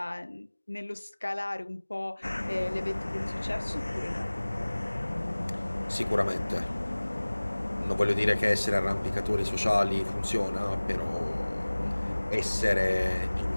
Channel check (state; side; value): inverted; both; correlation -1.00